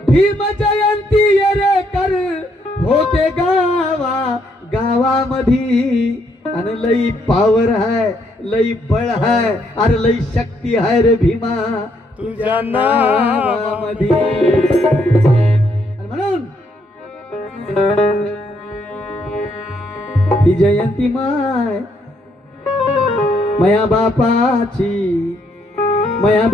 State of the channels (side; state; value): both; normal; correlation 0.73